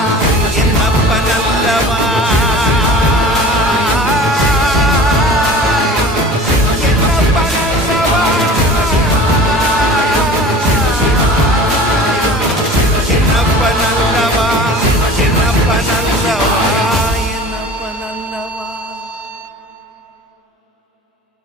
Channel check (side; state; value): both; normal; correlation 0.41